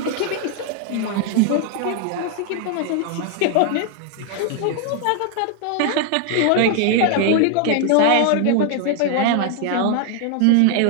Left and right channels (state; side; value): different; both; correlation 0.00